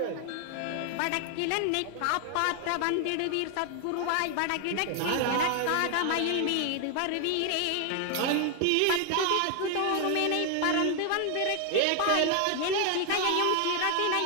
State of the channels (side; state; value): both; different; correlation 0.00